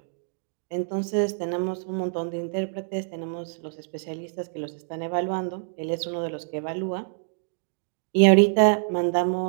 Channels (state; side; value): silent; left; digital silence